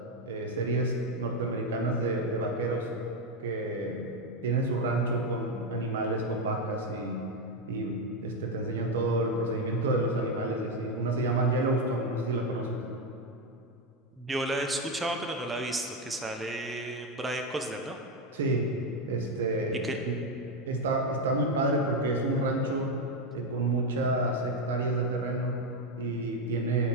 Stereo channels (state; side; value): normal; both; correlation 0.07